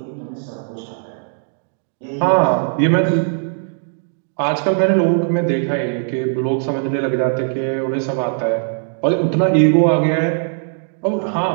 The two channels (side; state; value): left; silent; digital silence